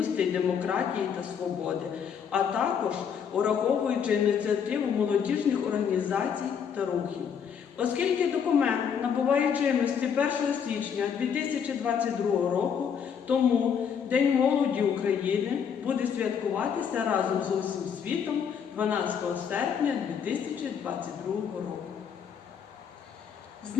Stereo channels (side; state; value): right; quieter; 7.4 dB